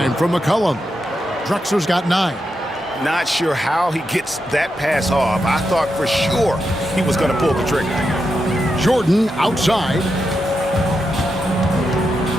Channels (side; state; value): both; normal; correlation 0.86